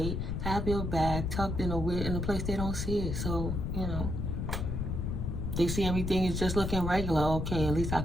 Have your bag tucked in a place they don't see it. So, you know, they see everything is just looking regular. Okay, at least I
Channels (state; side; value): noise; left; rumble, 2 dB below the sound